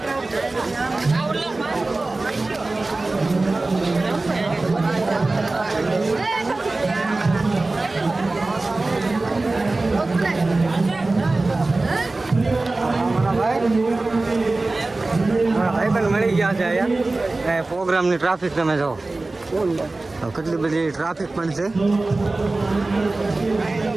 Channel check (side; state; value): left; quieter; 3.2 dB